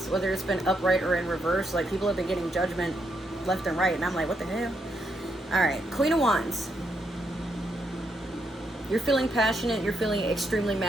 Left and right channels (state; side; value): normal; both; correlation 0.78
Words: whether it's been upright or in reverse. Like, people have been getting Judgment left and right, and I'm like, what the hell? All right, Queen of Wands. You're feeling passionate. You're feeling extremely